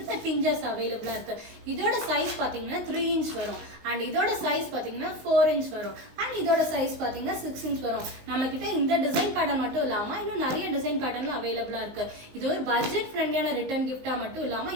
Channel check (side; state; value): left; late; 19 ms